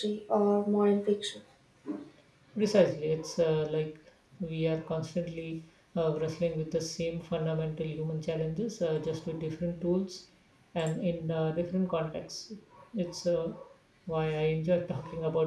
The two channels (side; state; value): both; identical; correlation 1.00